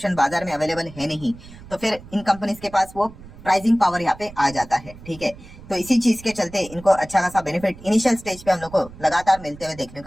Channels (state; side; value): noise; right; rumble, 18 dB below the sound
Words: बाजार में अवेलेबल है नहीं, तो फिर इन कंपनीज के पास वो प्राइसिंग पावर यहाँ पे आ जाता है, ठीक है। तो इसी चीज के चलते इनको अच्छा खासा बेनिफिट इनिशियल स्टेज पे हम लोग को लगातार मिलते हुए देखने